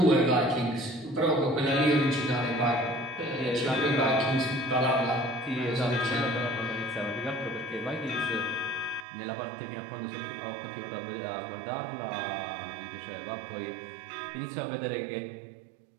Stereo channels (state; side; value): drops out; left; at 9.1 s